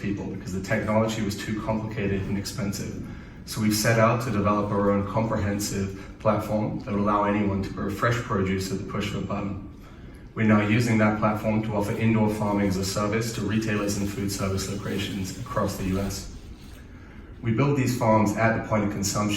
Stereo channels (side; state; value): both; identical; correlation 1.00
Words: people because the technology was too complicated and expensive. So we've set out to develop our own comprehensive platform that would allow anyone to grow fresh produce at the push of a button. We're now using that platform to offer indoor farming as a service to retailers and food service locations across the US. We build these farms at the point of